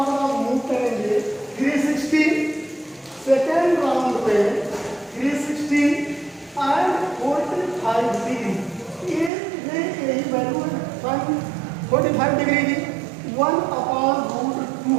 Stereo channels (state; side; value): drops out; left; at 9.3 s